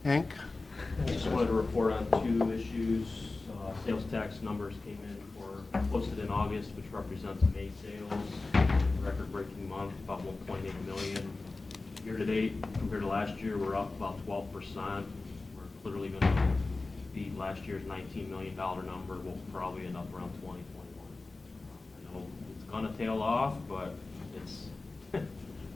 Hank? I just wanted to report on two issues. Sales tax numbers came in posted in August, which represents May sales, record-breaking month, about 1.8 million. Year-to-date, compared to last year, we're up about 12%. We're clearly going to beat last year's $19 million number. We'll probably end up around 20, 21. I know it's going to tail off, but it's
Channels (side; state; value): right; quieter; 3.4 dB